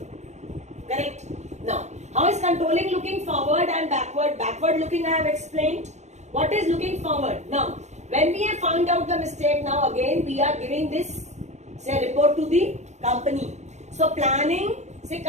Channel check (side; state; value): left; late; 0.33 ms